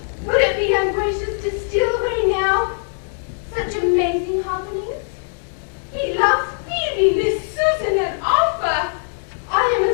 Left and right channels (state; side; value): silent; right; digital silence